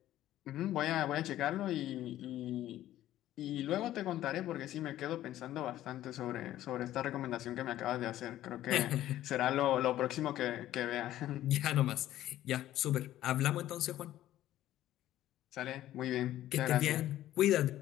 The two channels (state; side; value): quieter; right; 13.6 dB